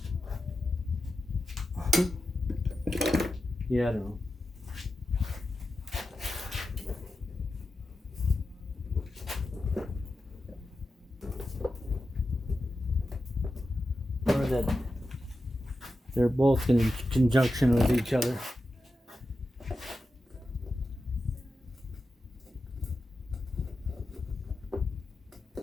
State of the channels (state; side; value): normal; both; correlation 0.91